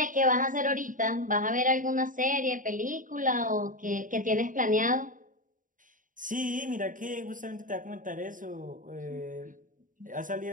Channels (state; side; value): late; left; 0.38 ms